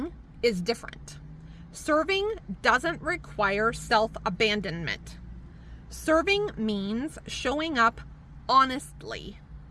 is different. Serving doesn't require self-abandonment. Serving means showing up honestly,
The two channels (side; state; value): both; identical; correlation 1.00